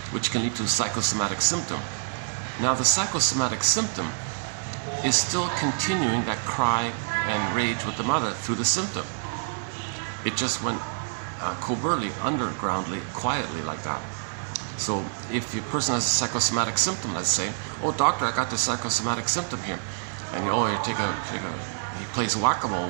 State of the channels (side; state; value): left; silent; digital silence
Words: which can lead to a psychosomatic symptom. Now the psychosomatic symptom is still continuing that cry and rage with the mother through the symptom. It just went covertly, undergroundly, quietly like that. So if a person has a psychosomatic symptom, let's say, oh doctor, I got this psychosomatic symptom here, and you he plays whack-a-mole